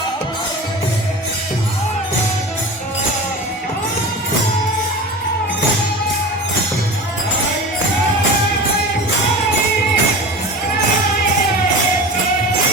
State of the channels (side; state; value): both; normal; correlation 0.32